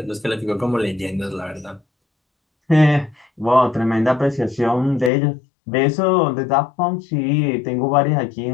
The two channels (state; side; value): drops out; right; at 5.1 s